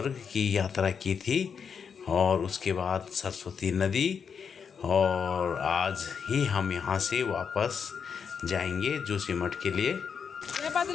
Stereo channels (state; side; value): quieter; right; 6.6 dB